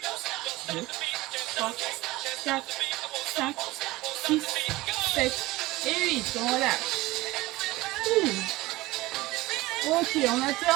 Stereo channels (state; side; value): quieter; left; 19.4 dB